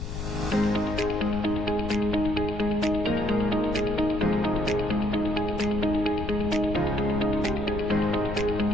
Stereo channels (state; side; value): noise; left; rumble, 6 dB below the sound